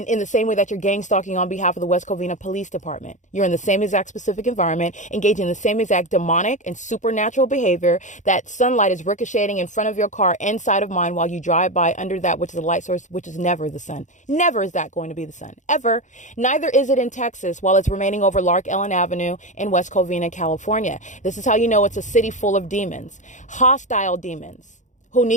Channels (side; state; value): right; late; 0.36 ms